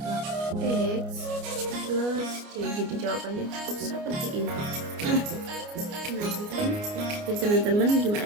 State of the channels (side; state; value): left; late; 29 ms